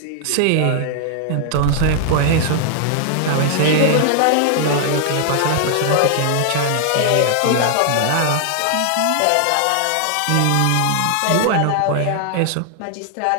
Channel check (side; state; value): both; different; correlation 0.00